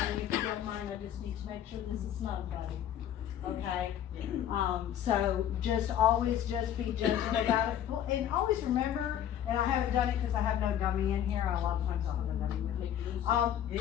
if you don't mind, I just need to make sure this is snug, buddy. okay? Yeah. So always just be gentle about it, and always remember, and I haven't done it because I have no gummy in here, a lot of times I'll have a gummy with me.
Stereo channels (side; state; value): right; quieter; 10.5 dB